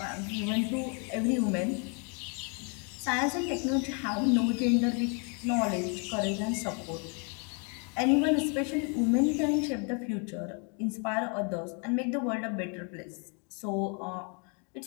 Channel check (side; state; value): right; quieter; 37.1 dB